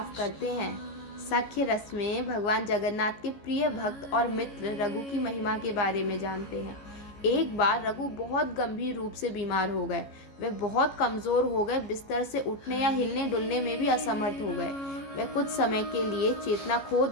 करते हैं। सख्य रस में भगवान जगन्नाथ के प्रिय भक्त और मित्र रघु की महिमा के बारे में जानते हैं। एक बार रघु बहुत गंभीर रूप से बीमार हो गए। वे बहुत कमजोर हो गए, बिस्तर से उठने या हिलने डुलने में भी असमर्थ हो गए। वे कुछ समय के लिए चेतना खो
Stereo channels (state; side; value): late; right; 14 ms